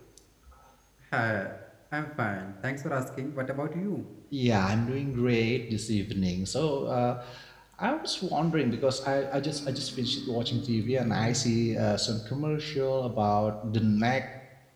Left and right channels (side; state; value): both; identical; correlation 1.00